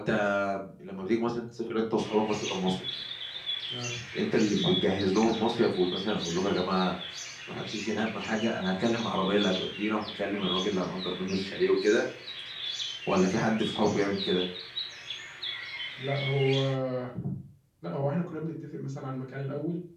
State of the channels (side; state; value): both; identical; correlation 1.00